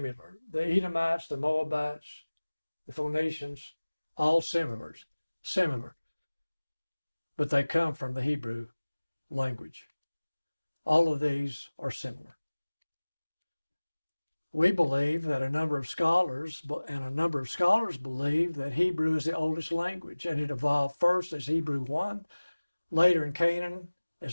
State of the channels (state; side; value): inverted; both; correlation -1.00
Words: The Edomites, the Moabites, the Phoenicians, all similar. But they come from the Hebrew language. All of these are similar. We believe that a number of scholars believe that Hebrew is the oldest language, and it evolved first as Hebrew 1, later in Canaan